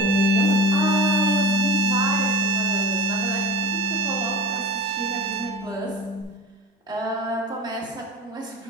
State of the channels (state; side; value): normal; both; correlation 0.32